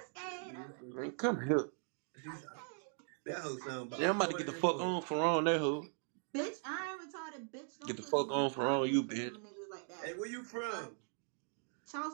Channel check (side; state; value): left; silent; 52 dB below the other